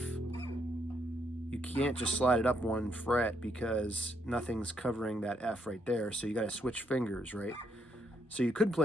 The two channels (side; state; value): both; normal; correlation 0.74